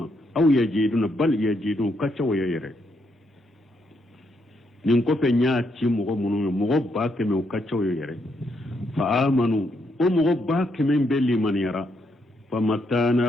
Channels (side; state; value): both; normal; correlation 0.77